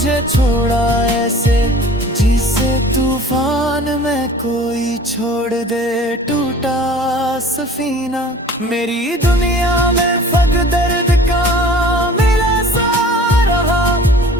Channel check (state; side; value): normal; both; correlation 0.46